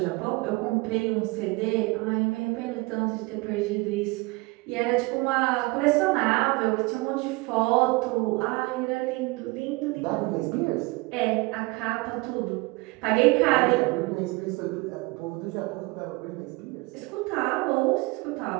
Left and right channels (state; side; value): quieter; left; 24.6 dB